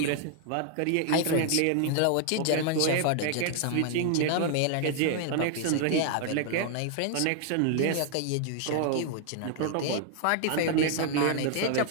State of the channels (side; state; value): both; different; correlation 0.00